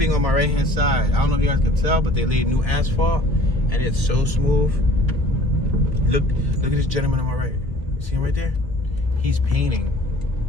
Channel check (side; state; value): left; late; 1.4 ms